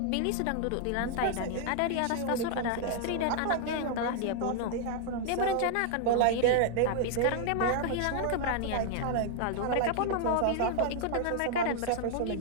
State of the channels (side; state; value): both; different; correlation 0.00